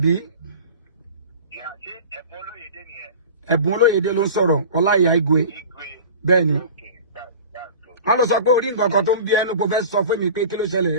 Yeah, ṣé Ẹ̀bùn Olóyèdé nìyẹn? Ẹ̀bùn Olóyèdé ló ń sọ̀rọ̀, Olaiya Igwe. Bẹ́ẹ̀ ni. Wọ́n lọ sọ pé orí nǹkan kan tó ń bí ẹnu kò fẹ́ sọ fún mi pé kí ló ṣẹlẹ̀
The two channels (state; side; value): inverted; both; correlation -0.38